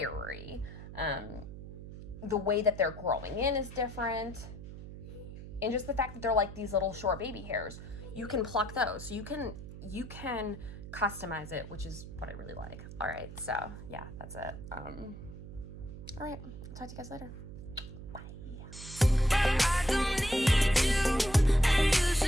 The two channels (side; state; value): right; noise; hum, 12 dB below the sound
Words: The way that they're growing in is different. And just the fact that they're like these little short baby hairs, you can pluck those. So you can customize it, which is what I really like. All right, so yeah, that's it. All right, I'll talk to you guys later. Bye.